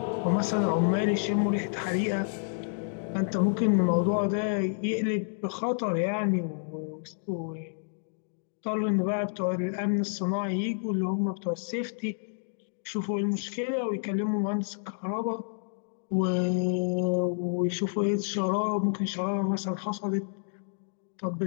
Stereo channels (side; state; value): right; silent; digital silence